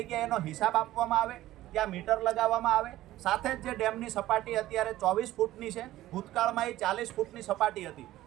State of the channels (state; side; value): quieter; left; 15.1 dB